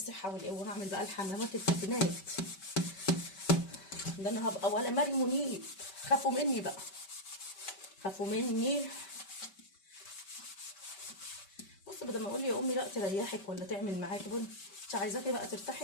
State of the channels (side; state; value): right; late; 5.2 ms